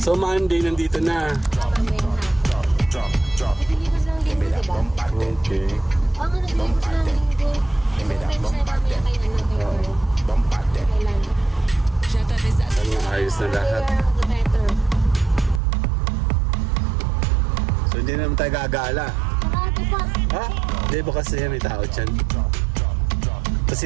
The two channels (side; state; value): left; drops out; at 15.6 s